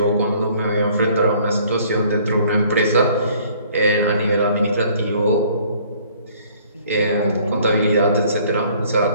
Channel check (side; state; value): both; inverted; correlation -0.57